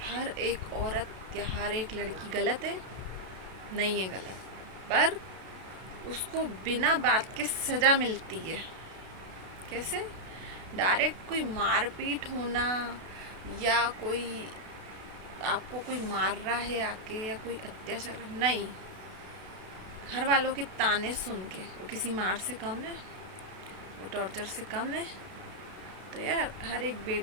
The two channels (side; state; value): left; late; 32 ms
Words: हर एक औरत या हर एक लड़की गलत है? नहीं है गलत, पर उसको बिना बात के सज़ा मिलती है। कैसे? डायरेक्ट कोई मारपीट होना, या कोई आपको कोई मार रहा है आके, या कोई अत्याचार, नहीं। घर वालों के ताने सुन के वो किसी मार से कम है, वो टॉर्चर से कम है। तो यार हर एक